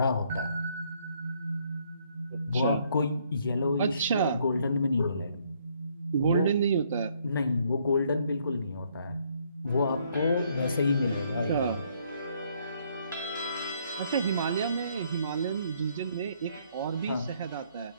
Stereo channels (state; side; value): inverted; both; correlation -0.68